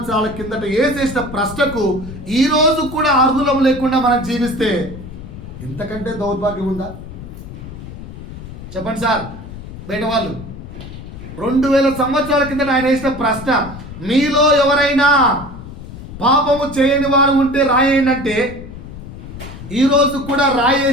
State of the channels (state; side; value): noise; left; rumble, 12 dB below the sound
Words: కిందట వేసేసిన ప్రశ్నకు ఈరోజు కూడా అర్హులం లేకుండా మనం జీవిస్తే ఇంతకంటే దౌర్భాగ్యం ఉందా? చెప్పండి సార్, బయట వాళ్ళు. 2000 సంవత్సరాల కిందట ఆయన వేసిన ప్రశ్న, మీలో ఎవరైనా పాపము చేయని వారు ఉంటే రాయండి అంటే, ఈరోజు కూడా